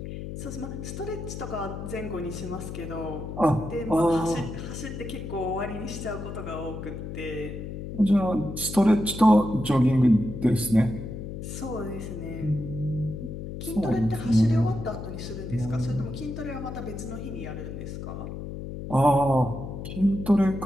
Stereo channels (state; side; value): noise; left; hum, 8 dB below the sound